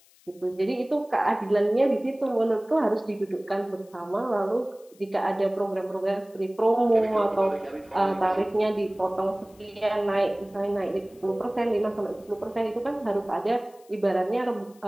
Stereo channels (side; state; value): left; noise; hiss, 29 dB below the sound